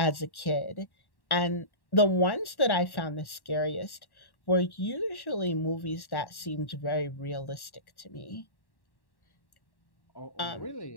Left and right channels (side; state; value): right; late; 1.1 ms